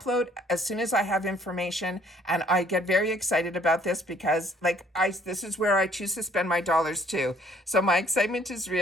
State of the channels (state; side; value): normal; both; correlation 0.60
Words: as soon as I have information, and I get very excited about this because this is where I choose to spend my dollars too. So my excitement is